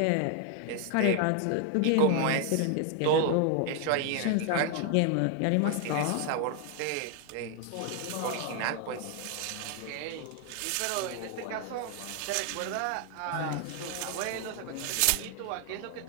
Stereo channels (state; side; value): different; both; correlation 0.00